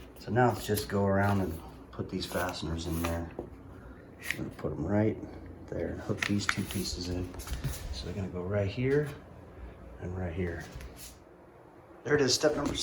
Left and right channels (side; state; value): both; identical; correlation 1.00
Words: So now let's just go around and put these fasteners in there. I'm gonna put them right there and hook these two pieces in. So they're gonna go right here and right here. There it is, step number